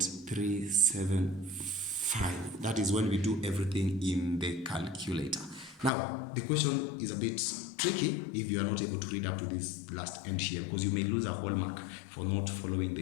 That is when we do everything in the calculator. Now, the question is a bit tricky if you are not able to read up to this last end here, because you may lose a whole mark for not following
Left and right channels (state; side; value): drops out; right; at 5.9 s